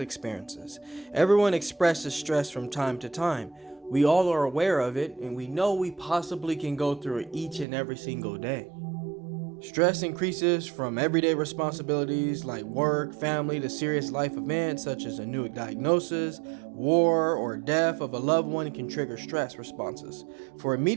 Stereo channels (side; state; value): left; drops out; at 7.7 s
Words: Everyone expresses stress from time to time. We all are aware of it, and we know we possibly can go through it each and every single day. Stress increases from everyday responsibilities like work, family, to serious life events such as a new diagnosis, war, or death of a loved one can trigger stress responses. For